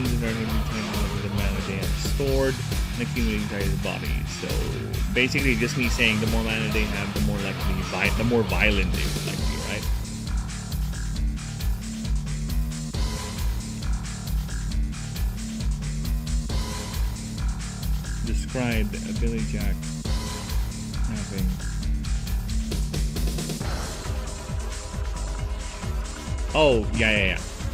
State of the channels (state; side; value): identical; both; correlation 1.00